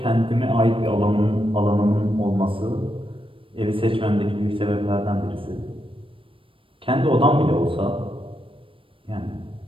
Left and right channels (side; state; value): left; late; 0.25 ms